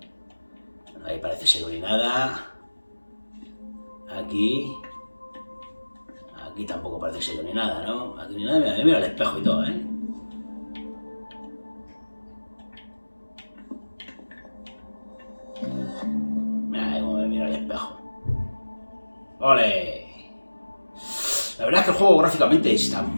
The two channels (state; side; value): inverted; both; correlation -1.00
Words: Ahí parece ser ni nada. Aquí tampoco parece ser ni nada, ¿no? Aquí ni nada, mira el espejo y todo, ¿eh? Mira cómo me mira el espejo. ¡Ole! La verdad es que el juego gráficamente está